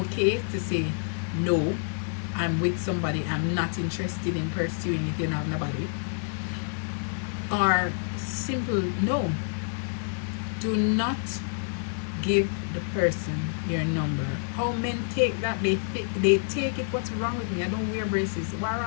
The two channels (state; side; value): silent; right; 59 dB below the other